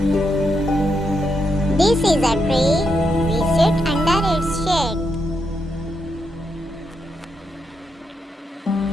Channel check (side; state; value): both; normal; correlation 0.82